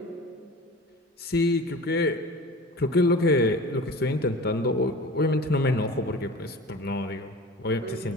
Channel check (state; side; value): normal; both; correlation 0.37